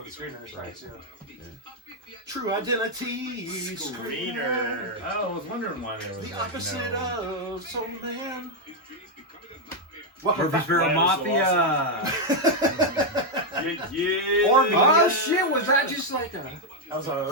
the screeners, right? So. Yeah. True identity Screener. Oh, I was wondering why they were the opposite of Soul Man. Murfreesboro Mafia. Or shit, was that just like a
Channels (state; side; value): normal; both; correlation 0.01